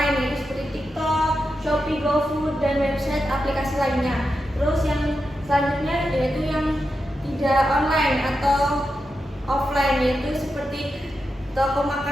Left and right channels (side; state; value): both; normal; correlation 0.88